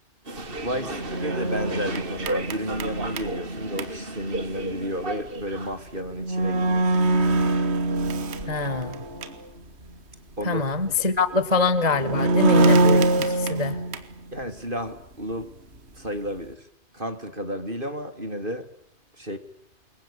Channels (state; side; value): late; left; 2.5 ms